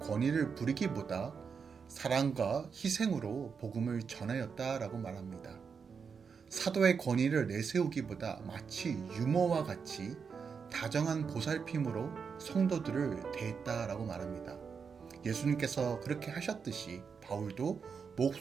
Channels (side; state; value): left; quieter; 6.0 dB